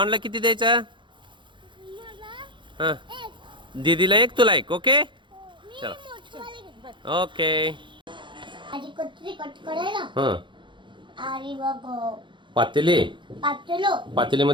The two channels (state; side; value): late; left; 0.23 ms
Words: किती द्यायचा. हां दीदीला एक तुला एक. ओके चला ओके. हां पातेले.